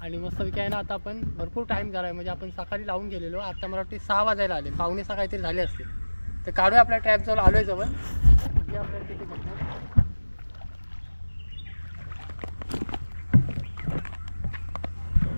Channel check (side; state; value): both; inverted; correlation -1.00